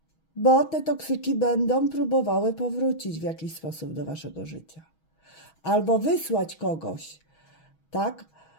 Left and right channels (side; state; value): right; late; 6.2 ms